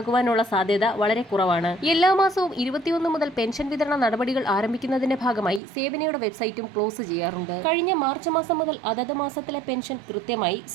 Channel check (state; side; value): drops out; left; at 5.6 s